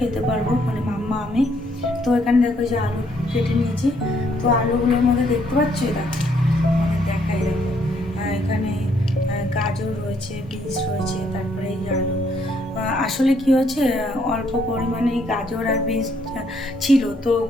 পারবো, মানে মাম্মা আমি। তো এখানে দেখো যে আলু কেটে নিয়েছি, তো আলুগুলোর মধ্যে দেখতে পাচ্ছ, দেখো দেখাই, দেখো এখানে গাজর রয়েছে, বিনস রয়েছে, তারপরে এই আলু। আসলে কি হয়েছে, অল্প পরিমাণে গাজর আর বিনস ছিল, তো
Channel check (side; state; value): both; normal; correlation 0.69